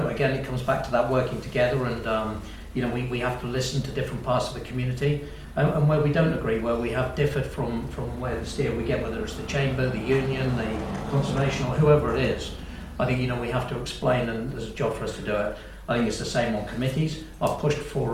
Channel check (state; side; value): identical; both; correlation 1.00